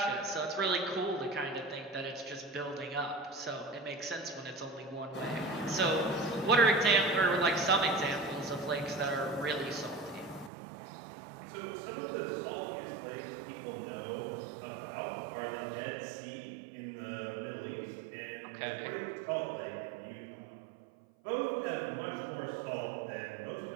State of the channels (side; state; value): left; drops out; at 10.5 s